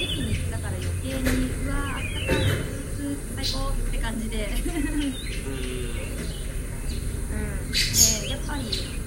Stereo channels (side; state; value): both; identical; correlation 1.00